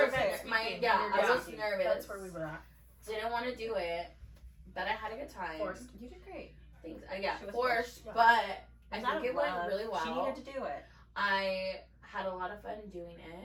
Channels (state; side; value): identical; both; correlation 1.00